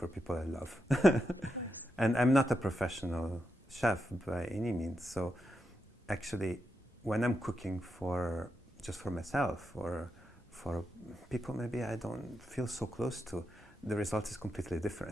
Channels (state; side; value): normal; both; correlation 0.85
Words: people I love. And I'm not a professional chef by any means, so actually when I'm cooking just for myself or for people maybe I don't feel so close to, the result is completely